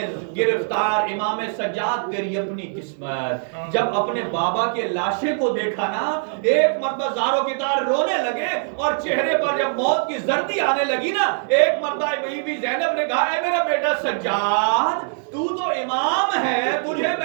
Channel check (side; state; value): left; silent; 64 dB below the other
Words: گرفتار امام سجاد تیری اپنی قسمت، جب اپنے بابا کے لاشے کو دیکھا نا ایک مرتبہ زاروں کی طرح رونے لگے، اور چہرے پر جب موت کی زردی آنے لگی نا ایک مرتبہ بی بی زینب نے کہا اے میرا بیٹا سجاد تو تو امام ہے، تجھے